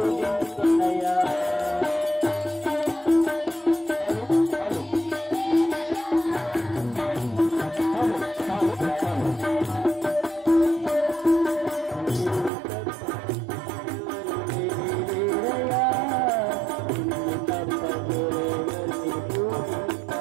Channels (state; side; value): drops out; left; at 12.5 s